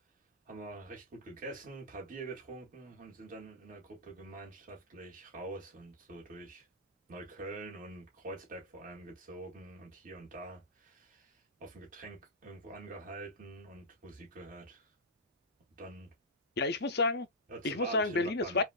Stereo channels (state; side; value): normal; both; correlation -0.14